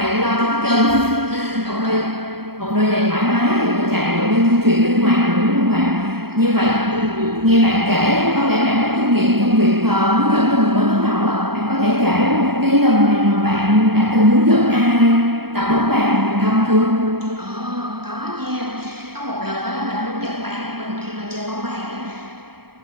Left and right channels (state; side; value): late; left; 0.96 ms